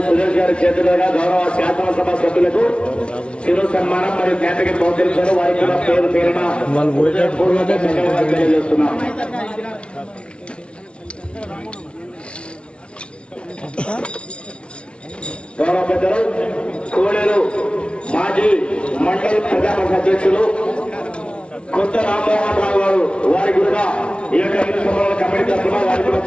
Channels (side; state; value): right; late; 0.059 ms